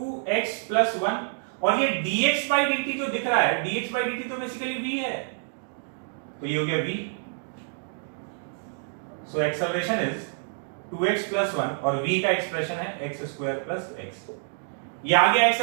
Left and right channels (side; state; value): left; silent; 60 dB below the other